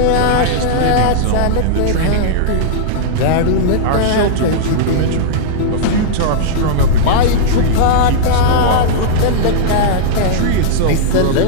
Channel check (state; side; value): different; both; correlation -0.02